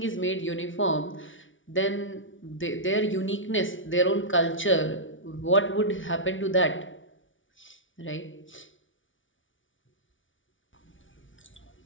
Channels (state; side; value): late; right; 0.56 ms